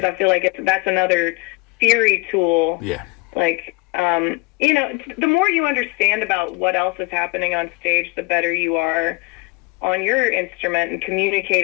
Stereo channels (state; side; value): quieter; right; 26.3 dB